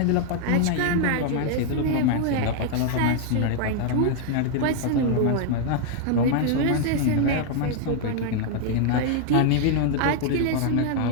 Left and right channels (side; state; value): both; different; correlation 0.00